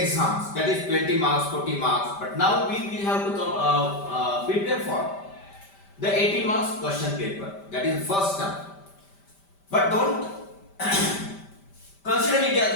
that is 20 marks, 40 marks. But now we will have to prepare for the 80 marks question paper. That is first term. But don't consider it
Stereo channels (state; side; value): late; right; 5.1 ms